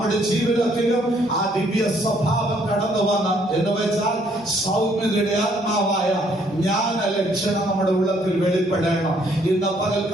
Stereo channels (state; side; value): normal; both; correlation 0.66